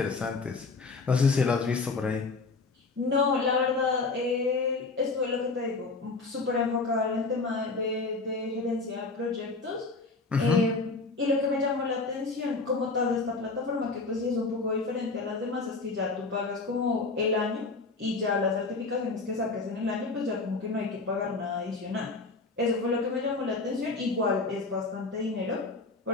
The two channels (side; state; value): right; quieter; 3.9 dB